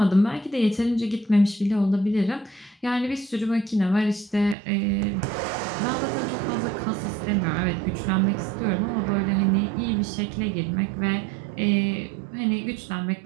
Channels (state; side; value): drops out; left; at 4.5 s